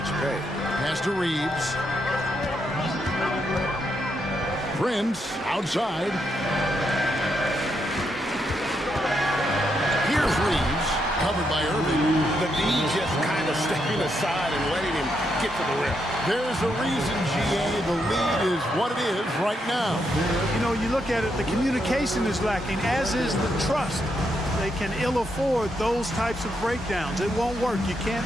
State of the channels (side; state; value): both; normal; correlation 0.80